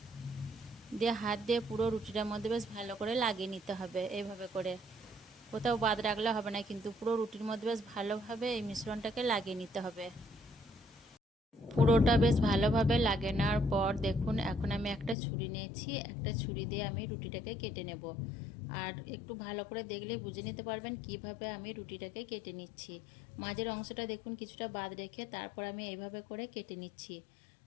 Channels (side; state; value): right; drops out; at 15.2 s